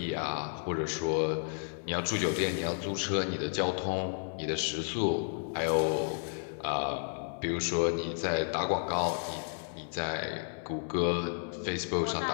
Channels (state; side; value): silent; right; 56 dB below the other